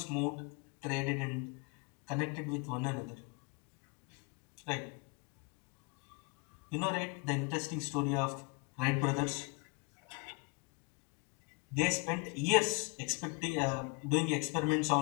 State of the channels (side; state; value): right; quieter; 29.4 dB